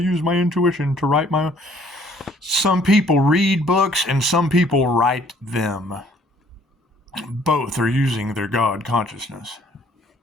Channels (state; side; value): normal; both; correlation 0.60